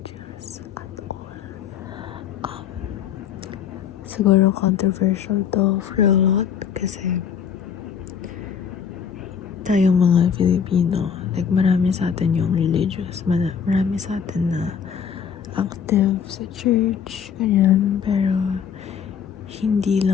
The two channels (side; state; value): right; quieter; 7.6 dB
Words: at all. Siguro controversial to for a lot kasi tayong mga Filipino, like marami sa atin yung religious, marami sa atin na active sa church, ganyan, pero hindi